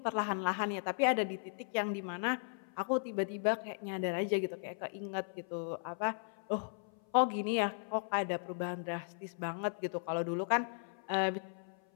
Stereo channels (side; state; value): right; silent; 53 dB below the other